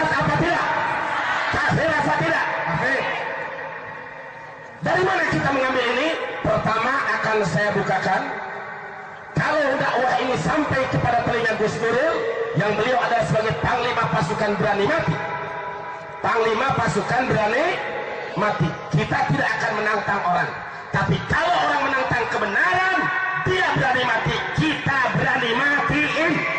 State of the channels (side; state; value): both; identical; correlation 1.00